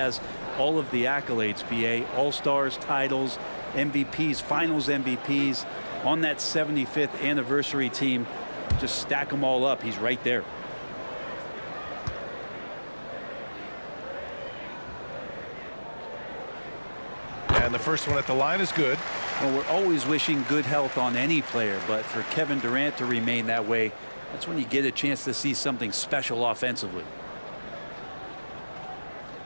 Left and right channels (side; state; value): both; inverted; correlation -1.00